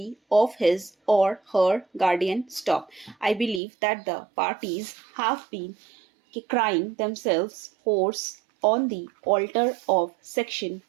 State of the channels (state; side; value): drops out; left; at 3.6 s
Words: of his or her guardian. I believe that the parties have been crying themselves hoarse on the altar of section